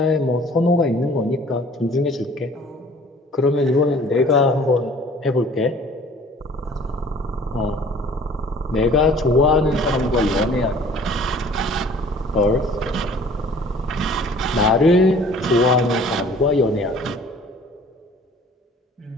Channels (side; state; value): both; normal; correlation 0.51